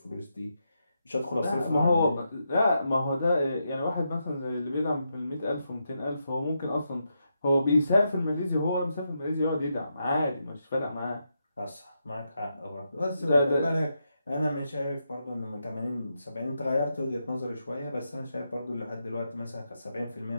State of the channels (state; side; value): inverted; both; correlation -0.83